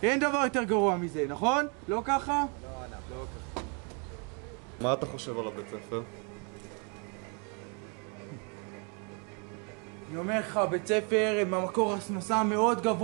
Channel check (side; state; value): left; quieter; 35.9 dB